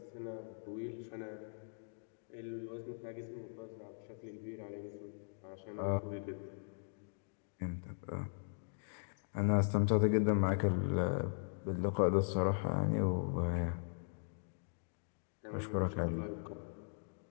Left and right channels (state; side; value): silent; right; digital silence